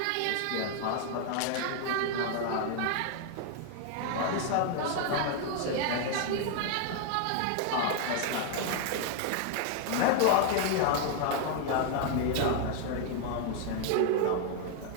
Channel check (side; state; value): both; different; correlation 0.00